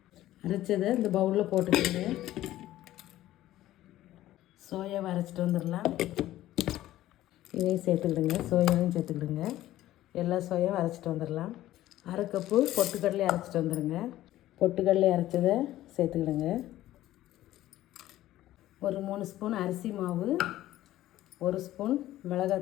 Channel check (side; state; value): right; quieter; 14.5 dB